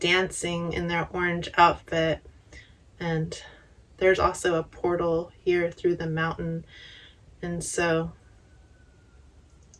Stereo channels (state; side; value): identical; both; correlation 1.00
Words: in their orange outfit. And there's also a portal here through the mountain. And so